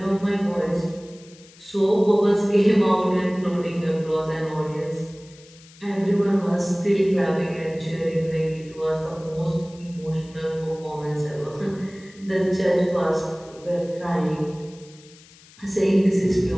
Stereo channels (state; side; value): noise; left; hiss, 24 dB below the sound